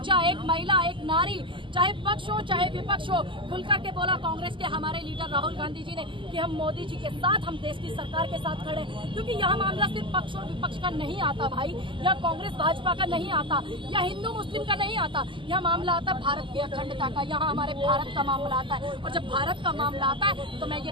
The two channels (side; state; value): left; late; 0.25 ms